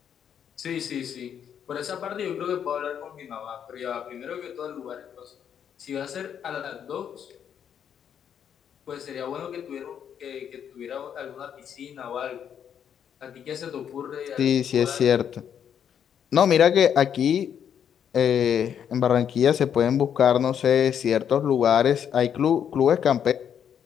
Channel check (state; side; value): quieter; right; 8.6 dB